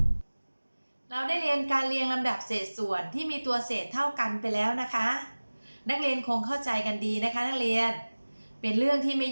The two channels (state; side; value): inverted; both; correlation -1.00